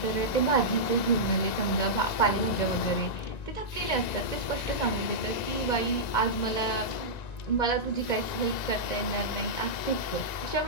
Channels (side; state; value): right; late; 1.9 ms